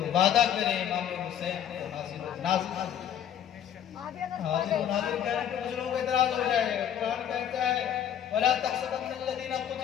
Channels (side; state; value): right; quieter; 9.7 dB